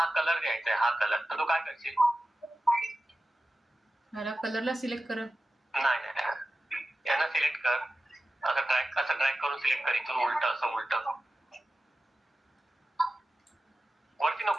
कलर द्यायचा आहे, हा कलर. तर तू काय करशील? मला कलरला सिलेक्ट कर. नाही, यांना सिलेक्ट कर. असं ड्रॅग करून सिलेक्ट कर. इथून असं उलट वरती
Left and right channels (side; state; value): both; normal; correlation 0.94